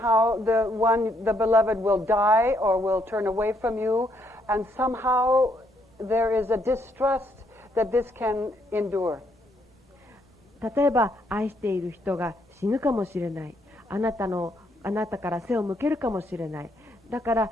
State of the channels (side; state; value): both; normal; correlation 0.72